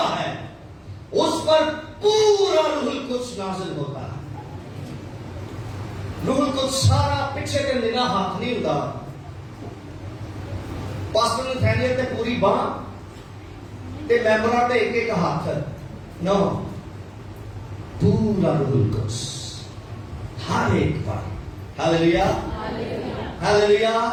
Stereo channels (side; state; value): both; identical; correlation 1.00